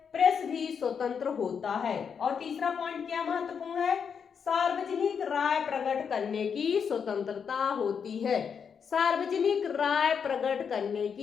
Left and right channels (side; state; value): right; quieter; 6.8 dB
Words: प्रेस भी स्वतंत्र होता है। और तीसरा पॉइंट क्या महत्वपूर्ण है? सार्वजनिक राय प्रकट करने की स्वतंत्रता होती है। सार्वजनिक राय प्रकट करने